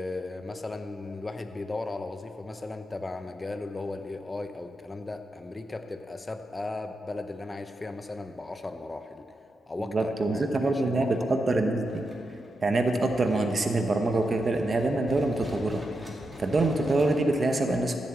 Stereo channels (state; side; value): normal; both; correlation 0.86